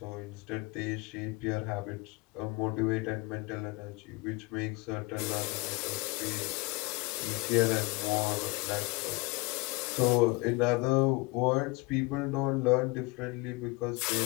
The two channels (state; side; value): quieter; right; 24.3 dB